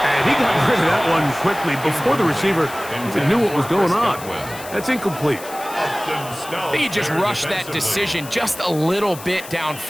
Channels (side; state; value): left; noise; hiss, 15 dB below the sound